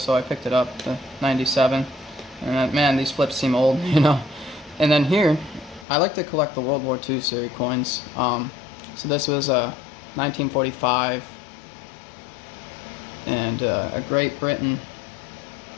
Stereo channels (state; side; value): drops out; right; at 5.9 s